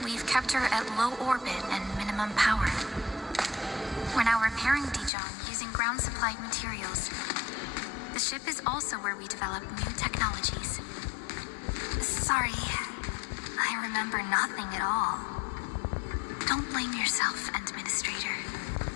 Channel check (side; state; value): right; drops out; at 5.1 s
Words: we've kept her at low orbit and minimum power. We're now repairing Dijong using ground-supplied materials. The ship is also where we develop new technologies. Sorry. I remember nothing at all. Don't blame yourself, Administrator.